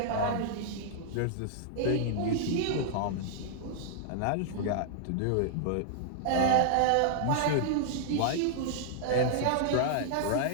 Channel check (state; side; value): different; both; correlation -0.01